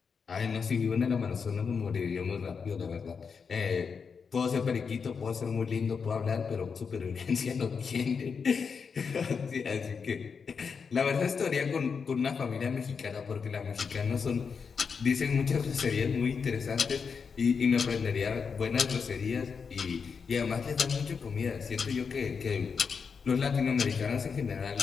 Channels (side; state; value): right; quieter; 5.8 dB